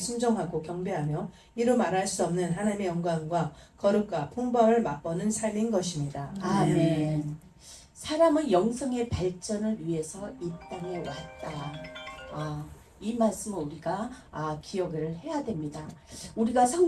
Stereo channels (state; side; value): identical; both; correlation 1.00